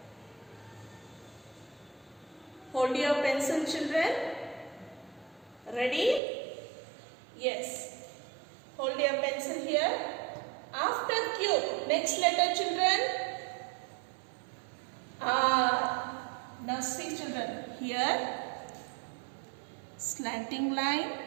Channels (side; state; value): left; drops out; at 6.2 s